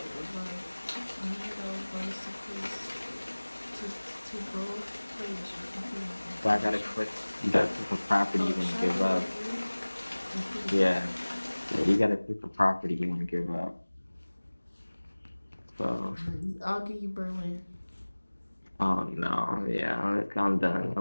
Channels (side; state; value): both; inverted; correlation -1.00